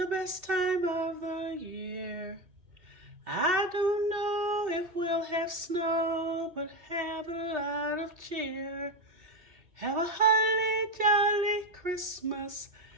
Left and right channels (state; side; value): late; left; 2.7 ms